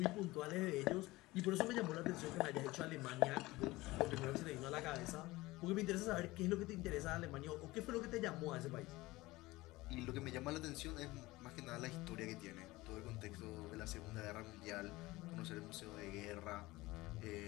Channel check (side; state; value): right; quieter; 19.9 dB